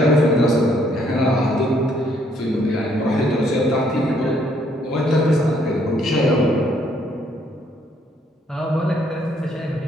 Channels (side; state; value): both; normal; correlation 0.68